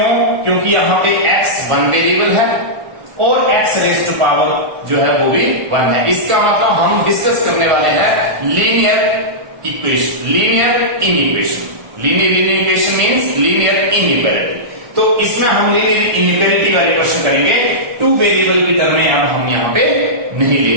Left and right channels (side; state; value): left; late; 1.5 ms